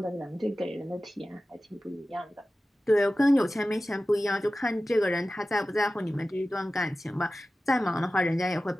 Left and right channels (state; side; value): normal; both; correlation 0.95